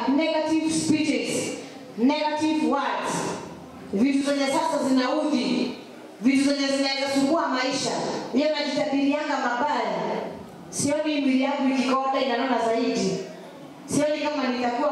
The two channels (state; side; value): identical; both; correlation 1.00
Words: negative speeches, negative words. Vitu zenye sasa zinaudhi, vitu zenye zinaweza sumbua maisha. Yeye anajitabirianga mabaya. Sioni mwili yangu ikikonda inanona zaidi. Sioni kama nitakuwa